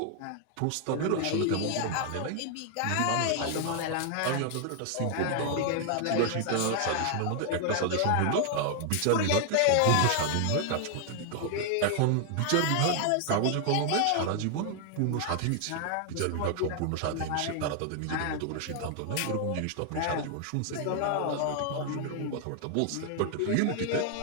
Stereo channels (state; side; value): different; both; correlation 0.00